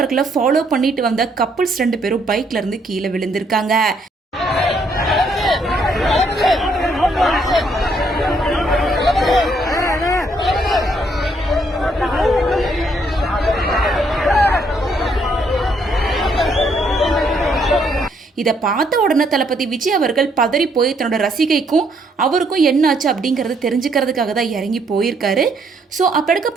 ஃபாலோ பண்ணிட்டு வந்த கப்புள்ஸ் 2 பேரும் பைக்ல இருந்து கீழே விழுந்திருக்காங்க. இதை பார்த்த உடனே தளபதி விஜய் அவர்கள் பதறி போய் தன்னோட ரசிகைக்கும் அவருக்கும் என்னாச்சு அப்படிங்கிறத தெரிஞ்சுக்கிறதுக்காக தான் இறங்கி போயிருக்காரு. ஸோ அப்போ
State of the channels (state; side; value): normal; both; correlation 0.70